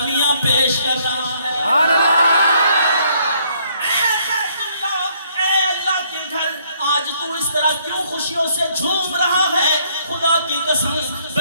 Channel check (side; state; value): both; inverted; correlation -0.67